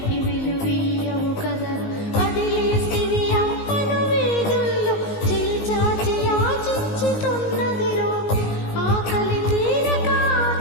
విలువీయవు కదరా. వదిలేస్తివి అమ్మను వీధుల్లో, చేచాచి యాచించుతున్నదిరో. ఆకలి తీరక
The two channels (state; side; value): late; right; 19 ms